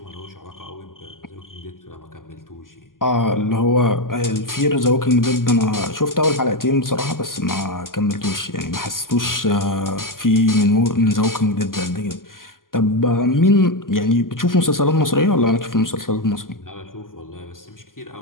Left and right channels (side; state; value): right; late; 0.91 ms